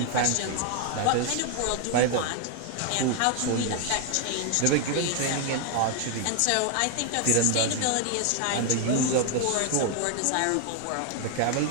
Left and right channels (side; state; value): both; different; correlation 0.01